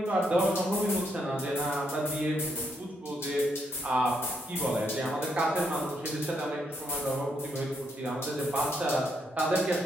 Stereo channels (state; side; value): normal; both; correlation 0.76